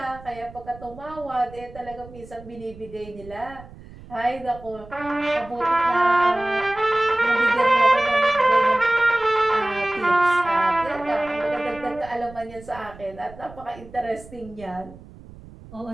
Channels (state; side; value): noise; right; rumble, 19 dB below the sound